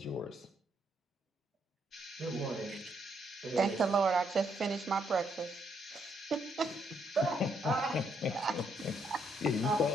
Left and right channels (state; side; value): normal; both; correlation 0.74